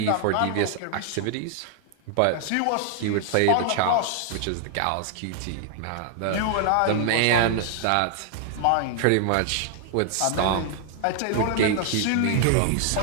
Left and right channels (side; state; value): both; different; correlation 0.00